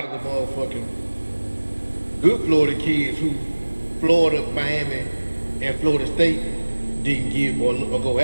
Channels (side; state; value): both; inverted; correlation -1.00